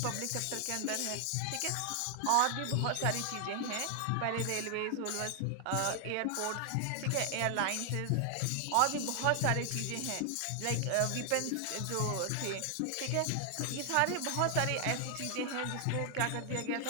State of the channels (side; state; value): both; different; correlation 0.00